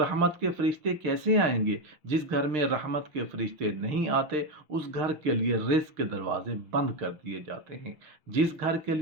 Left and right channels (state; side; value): late; left; 6.5 ms